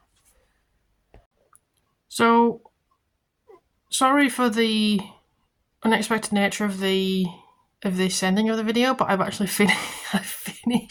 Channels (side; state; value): both; identical; correlation 1.00